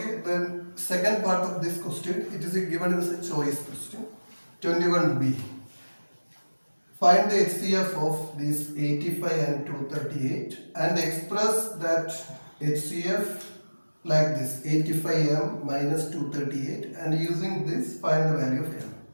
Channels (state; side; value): inverted; both; correlation -1.00